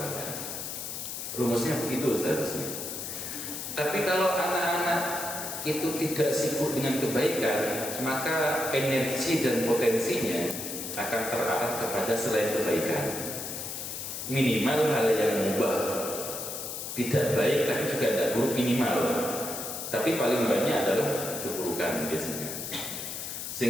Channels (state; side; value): noise; left; hiss, 6 dB below the sound